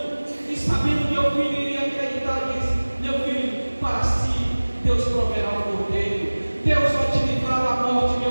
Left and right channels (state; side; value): inverted; both; correlation -1.00